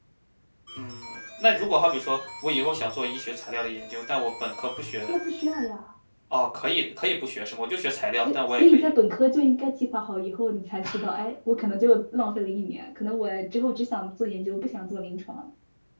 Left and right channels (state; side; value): inverted; both; correlation -1.00